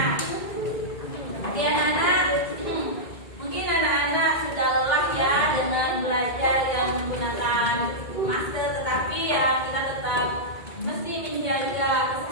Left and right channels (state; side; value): late; right; 2.1 ms